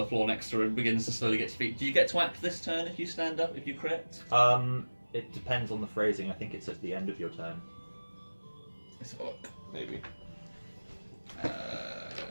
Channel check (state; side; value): inverted; both; correlation -1.00